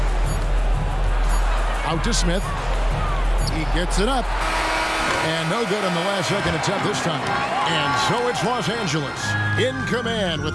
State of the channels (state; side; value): identical; both; correlation 1.00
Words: Out to Smith. He gets it up. And no good on the last second attempt this time. And so it's Los Angeles in command